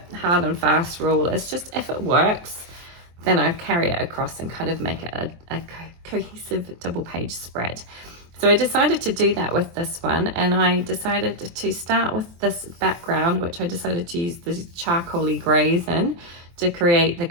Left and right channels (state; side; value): late; left; 23 ms